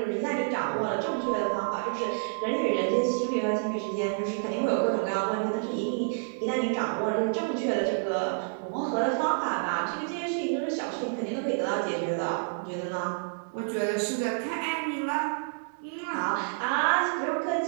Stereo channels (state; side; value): silent; left; digital silence